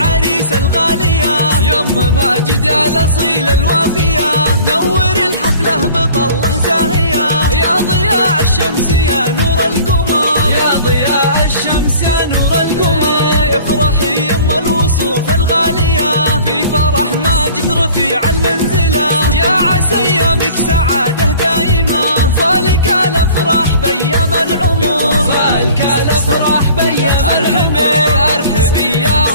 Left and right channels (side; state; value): both; inverted; correlation -0.47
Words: الغالية، يم ماجد الأصيل الوافية، نور الحفلة بطله زاهية، يا ضياء الشمس يا نور القمر، يا ضياء الشمس يا نور القمر. افرحي يم الوصوف الغالية في فرح ماجد رفيع المنزلة، يا عسى ايامك سعادة دائمة، فالك الافراح بيام العمر، فالك الافراح بيام. ارحبي